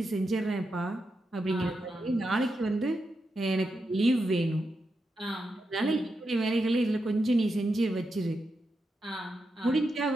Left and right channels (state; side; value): normal; both; correlation 0.86